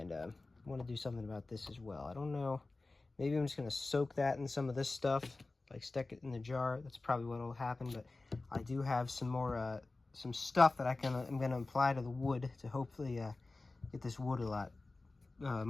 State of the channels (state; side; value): quieter; right; 3.4 dB